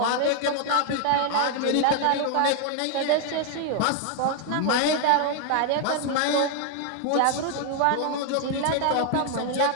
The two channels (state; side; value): different; both; correlation 0.00